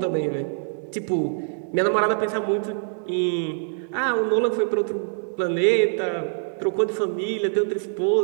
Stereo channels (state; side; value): silent; left; digital silence